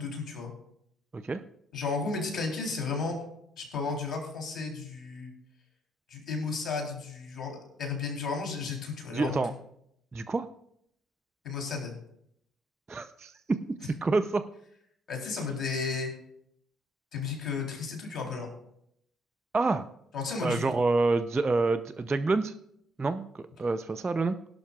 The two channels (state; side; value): normal; both; correlation 0.75